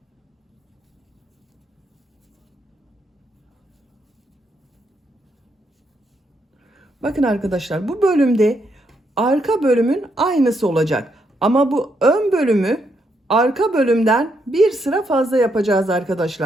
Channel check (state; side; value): normal; both; correlation 0.77